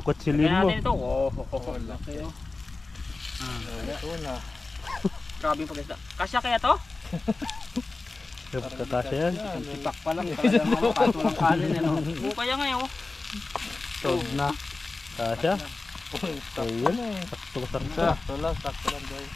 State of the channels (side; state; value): right; quieter; 3.5 dB